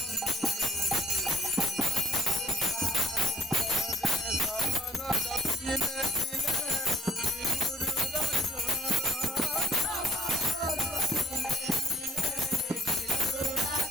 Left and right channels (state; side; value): normal; both; correlation 0.59